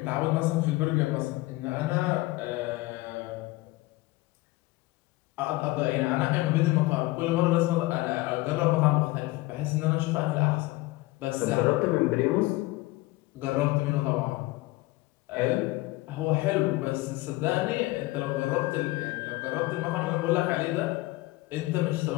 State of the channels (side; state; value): right; quieter; 20.4 dB